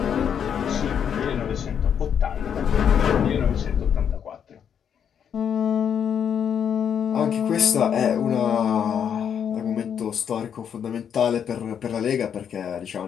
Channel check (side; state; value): right; quieter; 8.1 dB